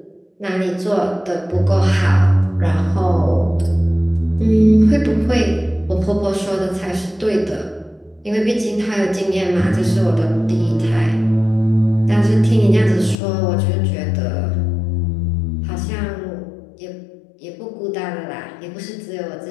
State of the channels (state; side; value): drops out; right; at 13.2 s